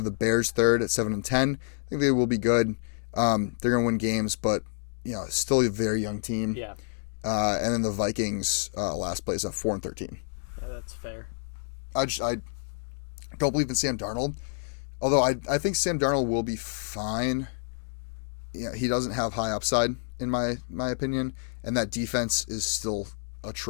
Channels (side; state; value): right; silent; digital silence